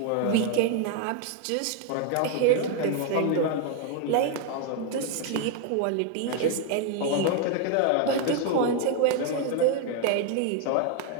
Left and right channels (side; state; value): both; different; correlation 0.01